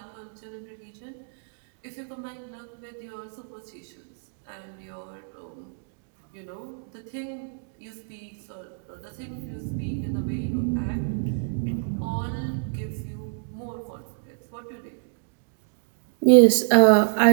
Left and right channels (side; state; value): left; silent; digital silence